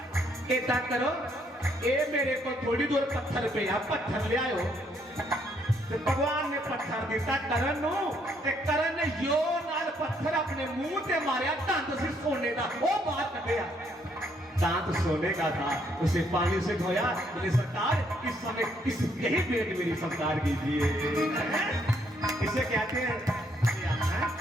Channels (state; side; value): normal; both; correlation 0.70